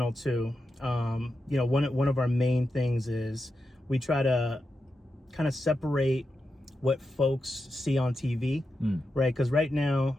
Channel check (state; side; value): normal; both; correlation 0.88